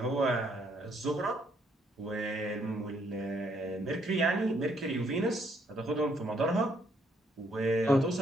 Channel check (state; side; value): normal; both; correlation 0.70